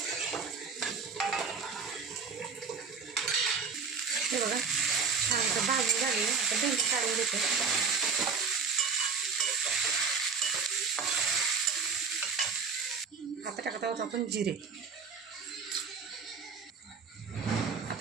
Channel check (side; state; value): left; quieter; 5.5 dB